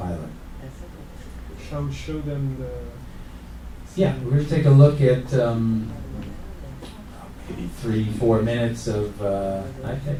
Shall we show them the... Yeah, we're going to take a look at maybe 3-4 minutes of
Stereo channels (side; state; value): both; identical; correlation 1.00